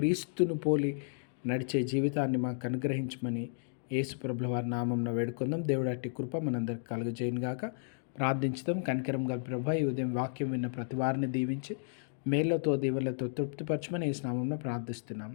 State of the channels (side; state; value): right; silent; digital silence